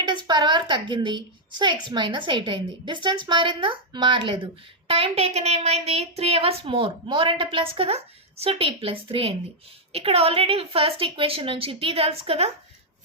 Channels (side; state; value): both; normal; correlation -0.04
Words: per hour తగ్గింది. సో x మైనస్ 8 అయింది. డిస్టెన్స్ మారిందా, మారలేదు. టైం టేకెన్ ఏమైంది, 3 hours మోర్ అంటే ప్లస్ కదా. సో t ప్లస్ 3 అయింది. ఇక్కడ ఆల్రెడీ ఫస్ట్ ఈక్వేషన్ నుంచి t తెలుసు కదా,